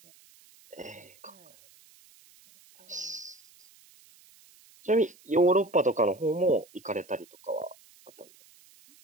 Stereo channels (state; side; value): noise; right; hiss, 27 dB below the sound